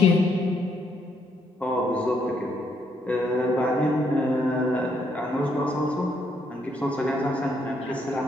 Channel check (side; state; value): both; normal; correlation 0.73